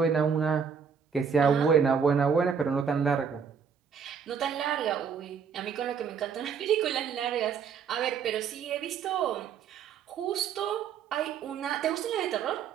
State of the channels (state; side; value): quieter; left; 6.8 dB